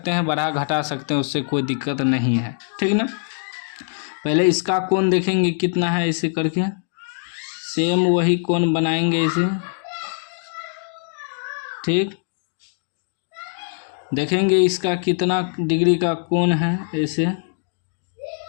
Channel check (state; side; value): silent; right; digital silence